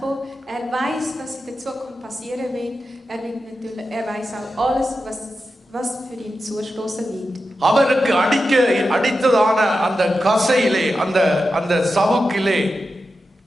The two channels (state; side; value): normal; both; correlation 0.90